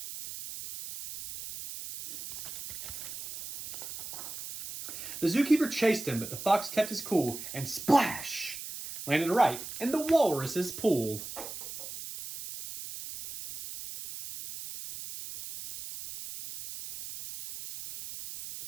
The zookeeper chased him, but the fox kept his cool and splash! Landed right in the walrus's pool.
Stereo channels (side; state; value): right; noise; hiss, 10 dB below the sound